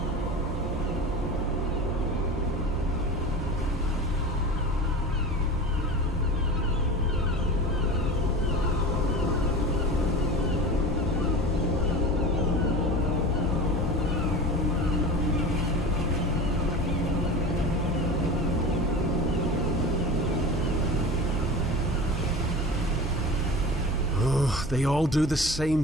They all do the same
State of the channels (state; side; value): normal; both; correlation 0.32